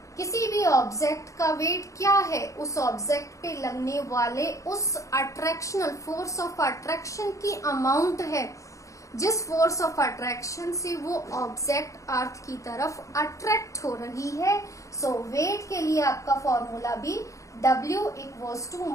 किसी भी ऑब्जेक्ट का वेट क्या है, उस ऑब्जेक्ट पे लगने वाले उस अट्रैक्शनल फोर्स ऑफ अट्रैक्शन की अमाउंट है, जिस फोर्स ऑफ अट्रैक्शन से वो ऑब्जेक्ट अर्थ की तरफ अट्रैक्ट हो रही है। सो वेट के लिए आपका फॉर्मूला भी W equals to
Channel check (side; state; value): right; late; 0.15 ms